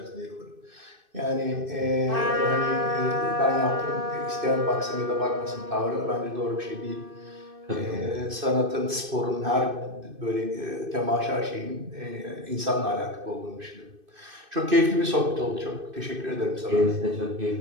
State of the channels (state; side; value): late; left; 2.6 ms